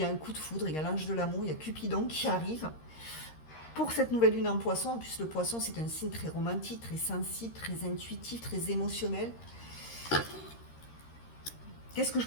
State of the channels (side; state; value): right; late; 13 ms